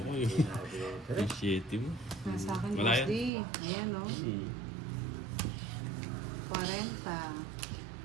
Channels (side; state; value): left; drops out; at 3.3 s